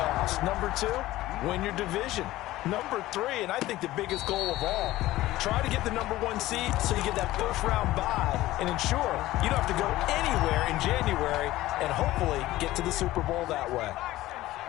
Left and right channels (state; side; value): quieter; right; 16.4 dB